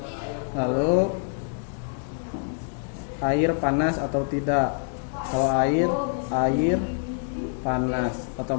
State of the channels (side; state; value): right; silent; digital silence